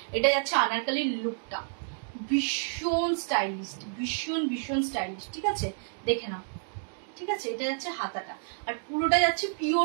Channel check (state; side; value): silent; left; digital silence